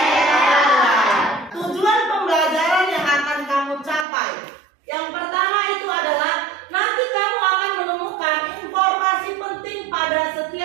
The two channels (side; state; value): left; drops out; at 4.0 s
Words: Tujuan pembelajaran yang akan kamu capai, yang pertama itu adalah nanti kamu akan menemukan informasi penting pada